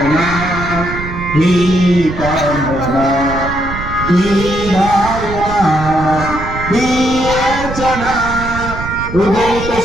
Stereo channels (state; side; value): noise; right; rumble, 8 dB below the sound